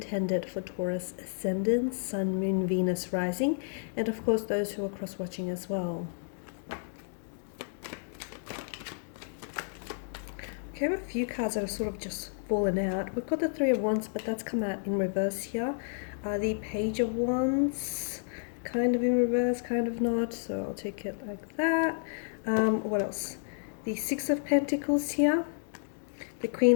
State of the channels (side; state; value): right; silent; digital silence